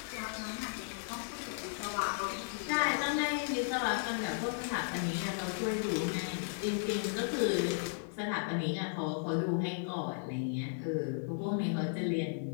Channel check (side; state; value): right; silent; 54 dB below the other